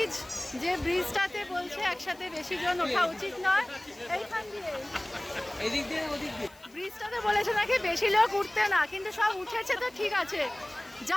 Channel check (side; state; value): left; noise; hiss, 27 dB below the sound